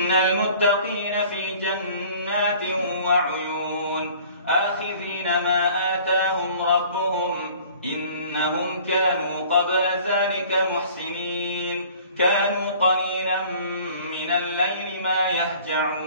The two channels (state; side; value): inverted; both; correlation -0.50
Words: المتقين في جنات وعيون آخذين ما آتاهم ربهم إنهم كانوا قبل ذلك محسنين كانوا قليلا من الليل ما